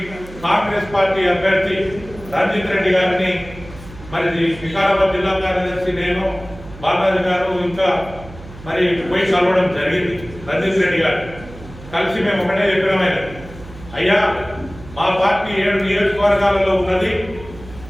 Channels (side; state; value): right; noise; hum, 16 dB below the sound